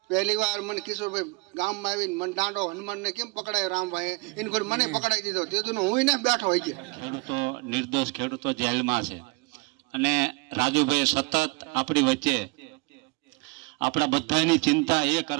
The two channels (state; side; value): quieter; left; 26.9 dB